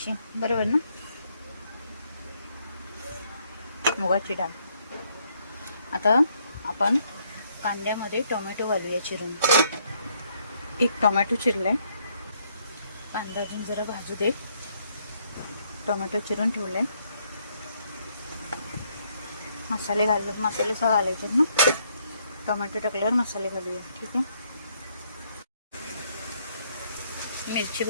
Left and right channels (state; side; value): inverted; both; correlation -0.70